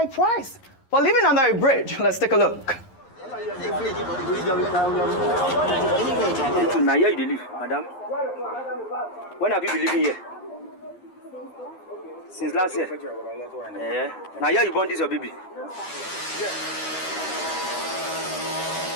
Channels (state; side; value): late; right; 11 ms